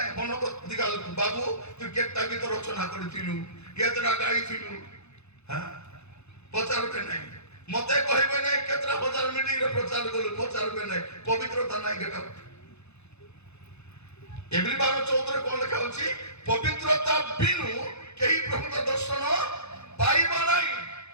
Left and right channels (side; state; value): right; late; 0.80 ms